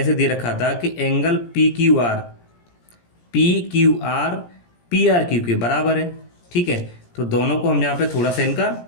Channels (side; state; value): right; late; 17 ms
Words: से दे रखा था कि एंगल PQR PRQ के बराबर है, ठीक है। तो दोनों को हम यहाँ पे थोड़ा सा